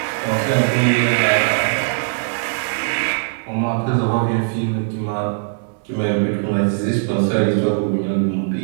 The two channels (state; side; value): silent; left; digital silence